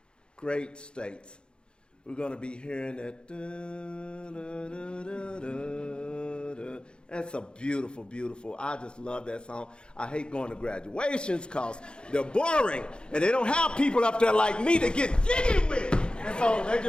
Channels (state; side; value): late; right; 0.052 ms